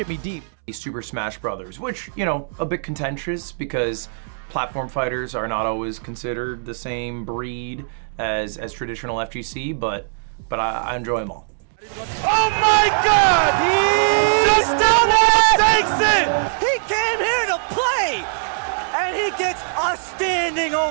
deep. Super Smash Brothers, which, a bit contentious because platform fighters are not always considered the same breed as traditional FGC, but I enjoy them all. Oh my God! He just takes it! He came here to play! And he gets a standing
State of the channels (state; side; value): silent; left; 65 dB below the other